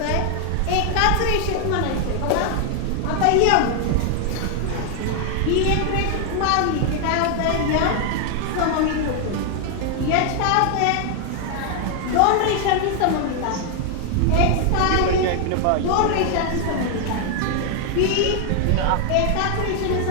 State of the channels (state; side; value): different; both; correlation 0.00